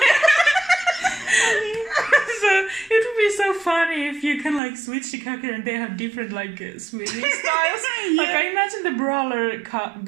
So it would be so funny if you can like switch the character and they have different like swimming styles. Like I imagine the brawler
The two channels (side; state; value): left; drops out; at 4.6 s